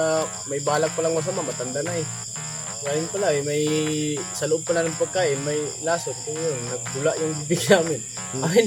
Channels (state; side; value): identical; both; correlation 1.00